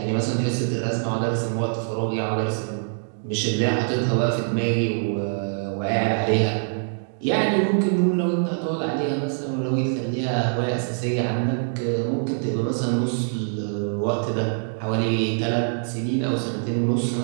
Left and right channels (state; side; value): silent; left; digital silence